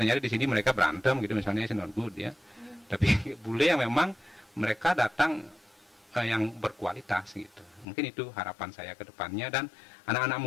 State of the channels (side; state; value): right; drops out; at 7.9 s